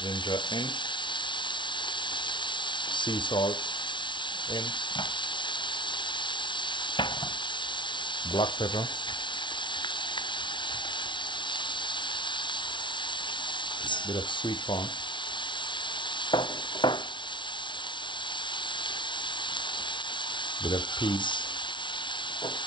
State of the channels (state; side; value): late; right; 0.24 ms